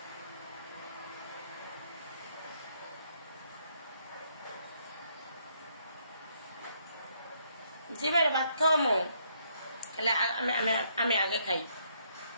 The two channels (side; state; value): both; inverted; correlation -0.71